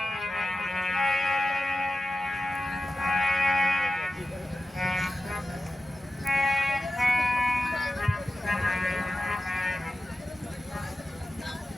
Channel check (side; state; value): both; normal; correlation 0.93